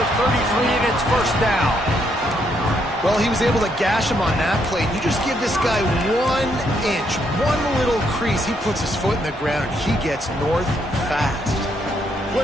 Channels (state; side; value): normal; both; correlation 0.74